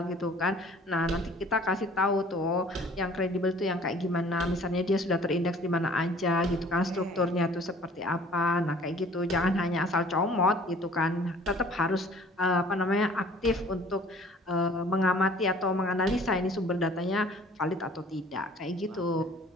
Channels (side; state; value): both; normal; correlation 0.52